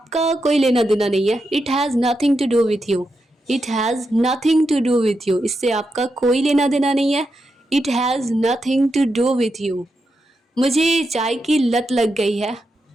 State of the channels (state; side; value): normal; both; correlation 0.86